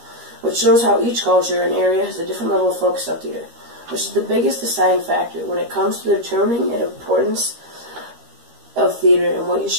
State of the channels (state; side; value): late; left; 13 ms